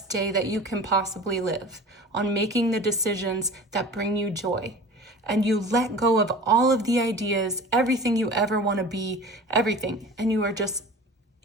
day that you can possibly live, on making the decisions that bring you joy. And you let go of all of the ideas, everything you ever want to be, everything. And you are just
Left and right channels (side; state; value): both; normal; correlation 0.39